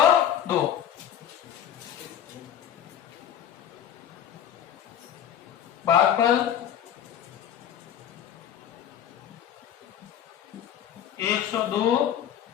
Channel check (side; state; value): right; quieter; 9.8 dB